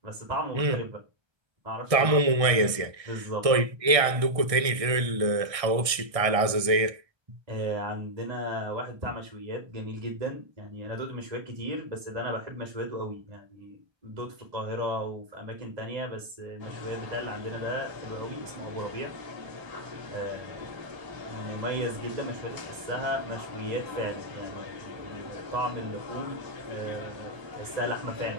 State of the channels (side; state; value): left; late; 1.6 ms